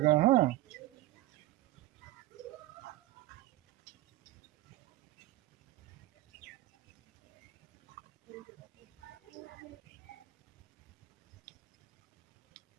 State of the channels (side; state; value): left; quieter; 16.7 dB